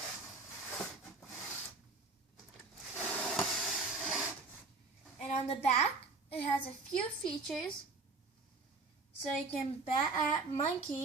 And on the back, it has a few features. So you can bat at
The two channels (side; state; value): left; quieter; 3.9 dB